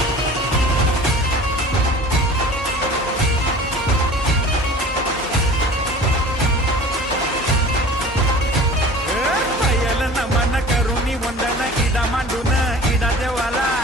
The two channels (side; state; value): both; normal; correlation 0.43